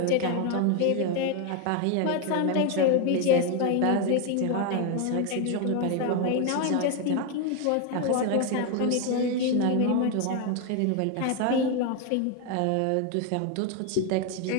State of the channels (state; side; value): different; both; correlation 0.01